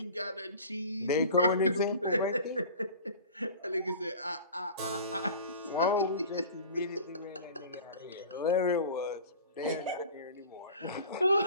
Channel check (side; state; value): both; inverted; correlation -0.40